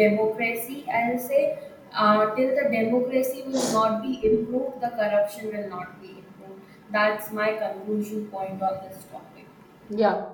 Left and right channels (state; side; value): identical; both; correlation 1.00